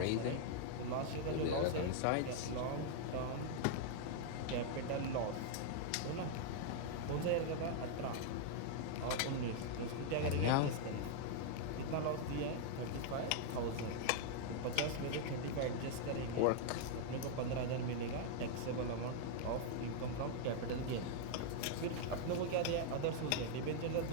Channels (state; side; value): different; both; correlation 0.00